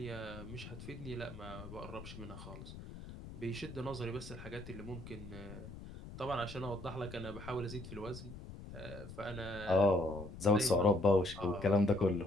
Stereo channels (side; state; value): left; noise; rumble, 12 dB below the sound